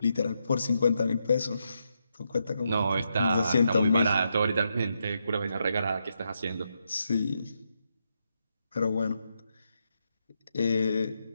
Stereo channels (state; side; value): inverted; both; correlation -0.82